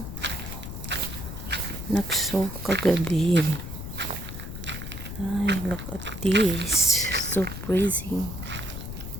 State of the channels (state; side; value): noise; left; rumble, 8 dB below the sound